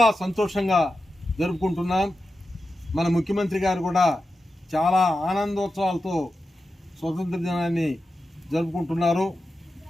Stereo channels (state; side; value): normal; both; correlation 0.91